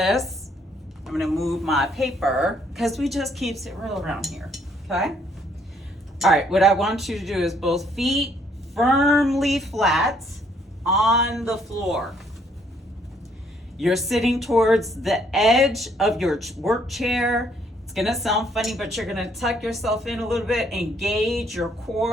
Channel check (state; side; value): normal; both; correlation 0.67